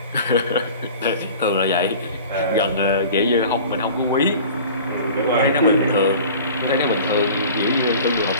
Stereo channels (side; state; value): both; inverted; correlation -0.42